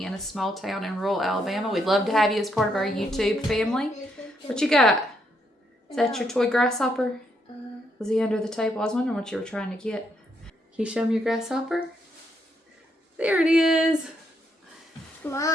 in a small town in rural Alabama. We'd love to have you as part of our YouTube family. What you got? Is that your toy grasshopper? Was he under the table? I was wondering what you were trying to get. Can you show me your grasshopper? There it is.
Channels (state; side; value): normal; both; correlation 0.76